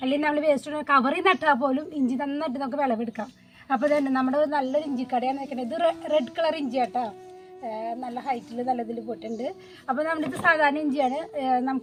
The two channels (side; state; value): both; identical; correlation 1.00